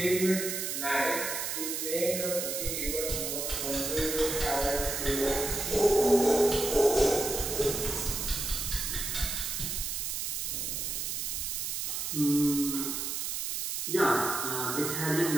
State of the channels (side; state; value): right; noise; hiss, 2 dB below the sound